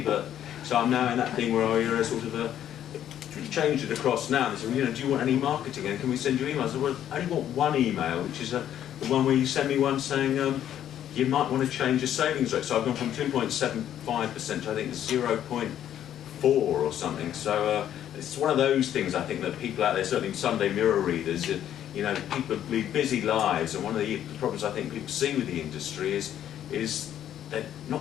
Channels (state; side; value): quieter; right; 10.8 dB